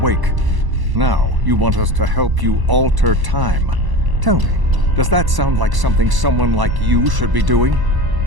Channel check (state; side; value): late; left; 1.0 ms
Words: Now, you want us to help you alter time. Tell me, does that sound like something someone like you should be doing?